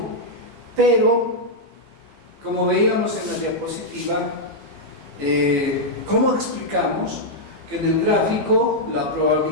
Pero, como veíamos en la diapositiva, ¿cómo explicamos que en el gráfico la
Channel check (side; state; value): left; late; 15 ms